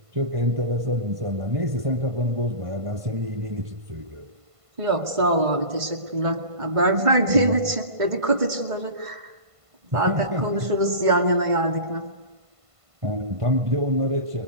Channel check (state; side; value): late; left; 1.5 ms